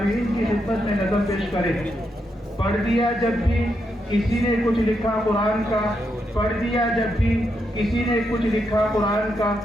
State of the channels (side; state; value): both; normal; correlation 0.82